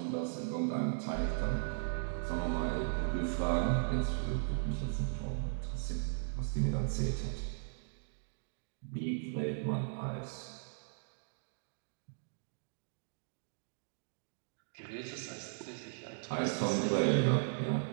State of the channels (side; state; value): left; silent; digital silence